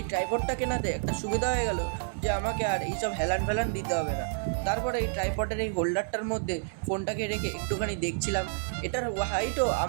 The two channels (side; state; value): left; silent; digital silence